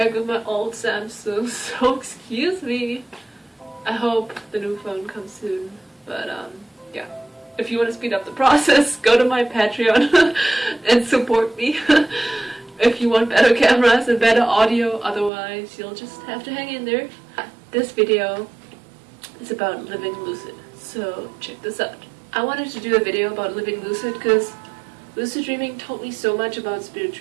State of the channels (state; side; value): drops out; left; at 15.3 s